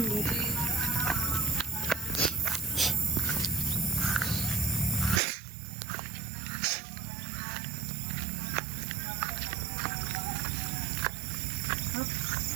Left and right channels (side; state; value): left; drops out; at 5.2 s